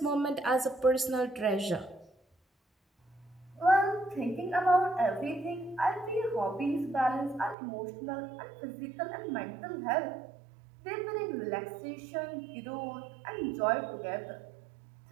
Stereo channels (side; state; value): left; drops out; at 7.6 s